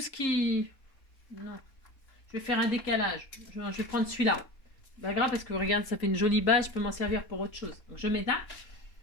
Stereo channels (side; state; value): right; late; 3.8 ms